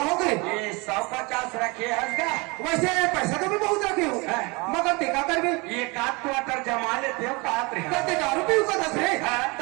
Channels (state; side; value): quieter; left; 27.5 dB